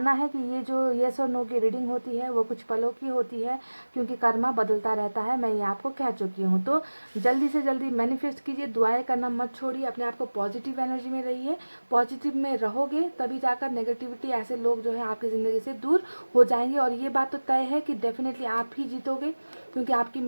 है कि ये जो येस और नो की रीडिंग होती है वो कुछ पलों की होती है, क्योंकि कर्मा बदलता रहता है, मैं ये आपको कह चुकी हूँ। तो जल्दी से जल्दी मैनिफेस्ट कीजिए, दुआएं करना मत छोड़िए, अपने आप को पॉजिटिव एनर्जी में रहिए, पॉजिटिव में रहोगे तभी जाकर नेगेटिविटी, ऐसे लोग जो है आपकी ज़िंदगी से दूर हो जाएंगे। और ये बात तो तय है कि डेफिनेटली आप ही जीतोगे, क्योंकि आपकी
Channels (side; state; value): both; inverted; correlation -1.00